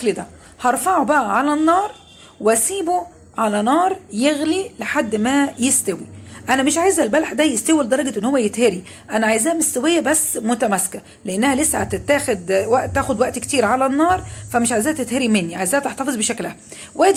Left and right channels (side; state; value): both; identical; correlation 1.00